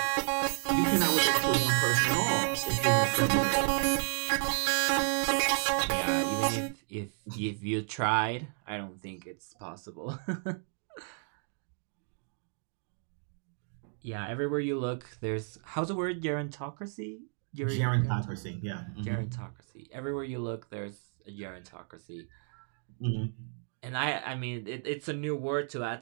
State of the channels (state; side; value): silent; left; 56 dB below the other